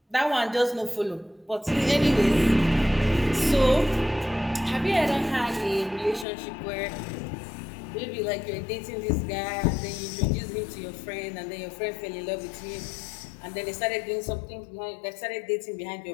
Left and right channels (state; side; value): drops out; right; at 6.2 s